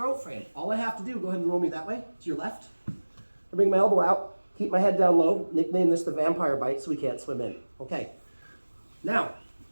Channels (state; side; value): inverted; both; correlation -1.00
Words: frame. All I have to do, go ahead and roll me that way, to your left. I bring my elbow out, keep my head down low, nickname this the vampire bite so he can't swim in. Okay, now,